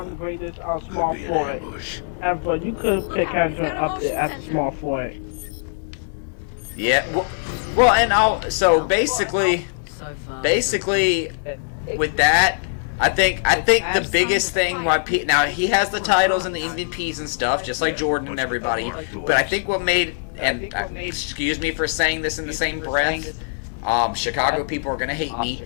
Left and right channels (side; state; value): right; silent; digital silence